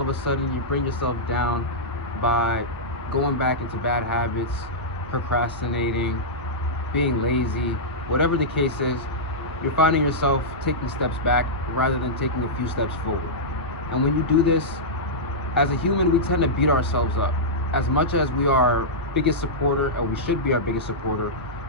of a sudden you bring yourself down by going back into bad habits, procrastinating, being lazy, whatever the case is. You're finding yourself taking steps back rather than taking a few steps forward. And when you do this, as a human, we tend to beat ourselves up. As much as we are our biggest supporter, or we should be our biggest supporter,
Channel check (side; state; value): both; normal; correlation -0.11